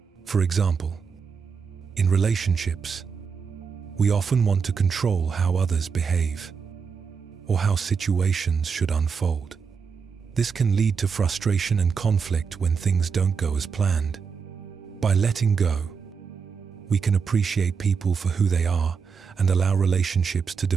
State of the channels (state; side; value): quieter; left; 5.8 dB